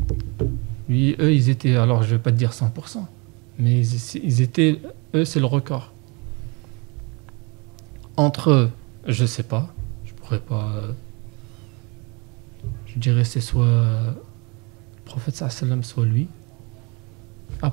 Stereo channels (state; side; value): quieter; left; 29.5 dB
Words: Lui, eux, ils étaient, alors je vais pas te dire 100%, mais ils étaient, eux, c'est le record. Entre eux, je sais pas. Pas, je dirais c'est soit le prophète sallam, soit lui.